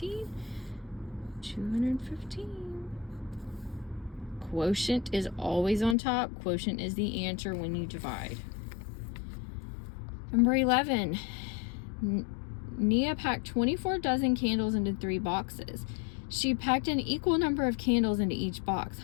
215. Quotient is always on top. Quotient is the answer when you divide. Number 11. Nia packed 24 dozen candles into 3 boxes. She packed an equal number of candles into each box.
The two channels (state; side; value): drops out; right; at 6.0 s